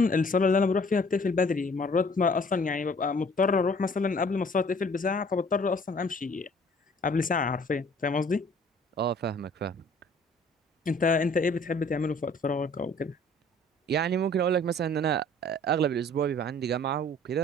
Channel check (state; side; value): normal; both; correlation 0.54